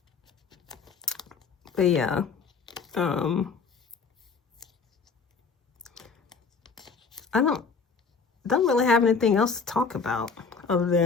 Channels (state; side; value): quieter; right; 5.2 dB